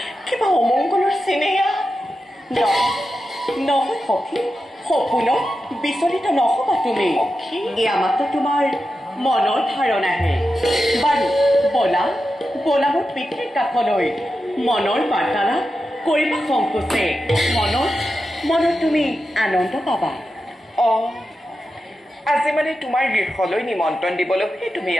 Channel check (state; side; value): normal; both; correlation 0.90